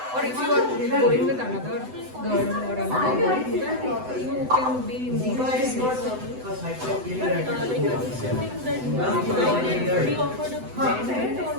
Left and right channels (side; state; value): left; late; 7.9 ms